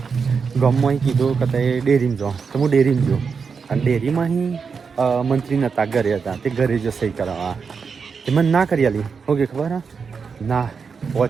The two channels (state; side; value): quieter; left; 5.6 dB